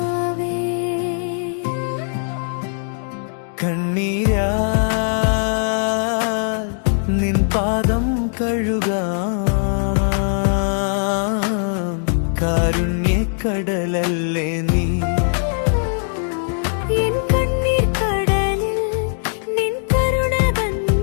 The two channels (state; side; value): silent; right; 63 dB below the other